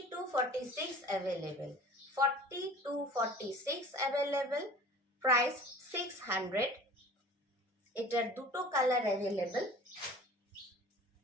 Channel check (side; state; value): both; normal; correlation 0.43